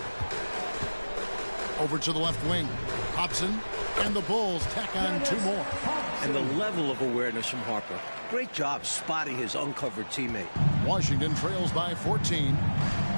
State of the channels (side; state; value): both; inverted; correlation -1.00